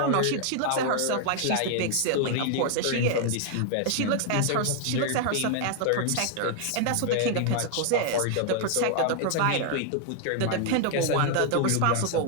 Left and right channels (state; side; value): different; both; correlation 0.00